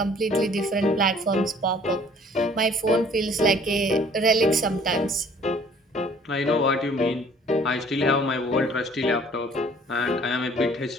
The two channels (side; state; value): both; normal; correlation 0.55